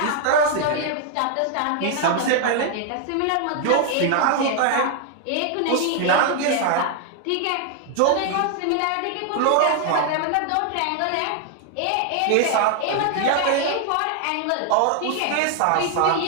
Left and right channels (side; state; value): both; different; correlation 0.00